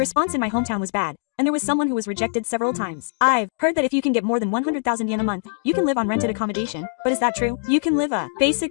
in my hometown was bad, and there was someone who was rejected several times. I've heard that if you can get more than 100,000 yen a month, you can live on rented accommodation. But is that true? You can live a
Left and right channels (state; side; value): silent; right; 64 dB below the other